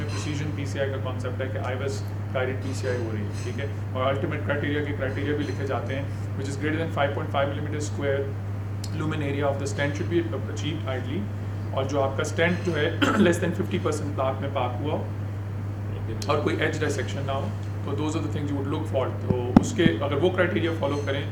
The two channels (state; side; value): identical; both; correlation 1.00